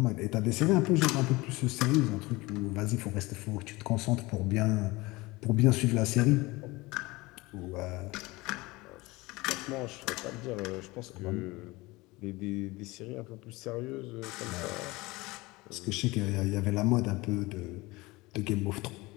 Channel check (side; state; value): right; quieter; 21.9 dB